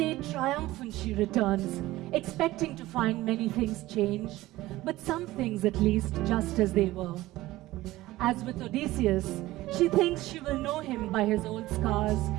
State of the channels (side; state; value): left; quieter; 17.2 dB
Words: triumphant, she returns, expecting to find many things changed, but some things at least just as they were. As with Odysseus, she thinks she will know him by his old scars